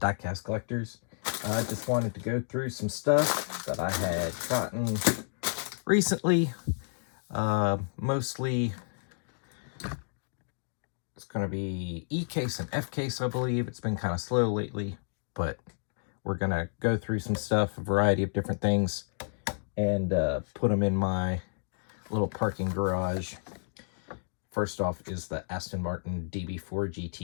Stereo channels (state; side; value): silent; right; digital silence